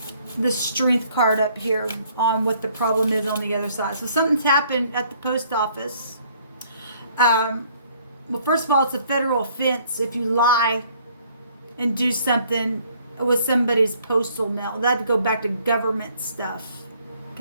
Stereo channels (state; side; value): inverted; both; correlation -0.62